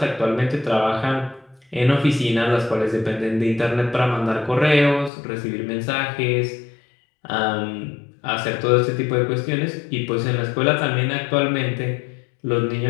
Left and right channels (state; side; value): drops out; right; at 5.1 s